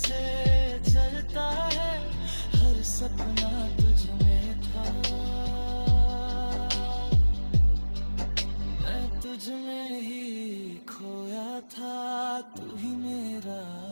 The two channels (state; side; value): inverted; both; correlation -1.00